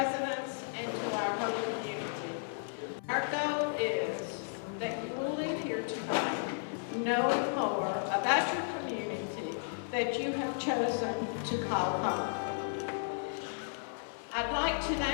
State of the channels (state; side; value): silent; right; 55 dB below the other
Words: and to our whole community. Our goal is that you will leave here tonight knowing more about your community that you have chosen to call home. I'd like to